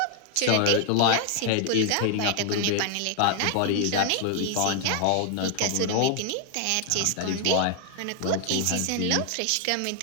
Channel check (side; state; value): both; different; correlation 0.00